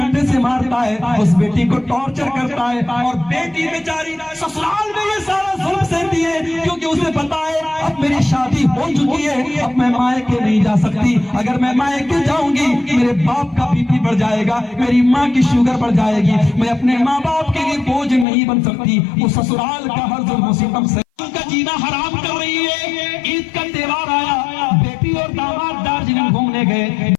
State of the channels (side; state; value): right; drops out; at 18.2 s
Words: سے مارتا ہے, اس بیٹی کو ٹارچر کرتا ہے, اور بیٹی بیچاری سسرال میں یہ سارا ظلم سہتی ہے کیونکہ اسے پتا ہے اب میری شادی ہو چکی ہے, اب میں مائکے نہیں جا سکتی. اگر میں مائکے جاؤں گی میرے باپ کا بی پی بڑھ جائے گا, میری ماں کی شوگر بڑھ جائے گی, میں اپنے ماں باپ کے لیے بوجھ نہیں بن سکتی. وہ سسرال کا ہر ظلم و ستم سے کا جینا حرام کر رہی ہے. عید کا تہوار آیا, بیٹی اور داماد دارجلنگ گھومنے گئے,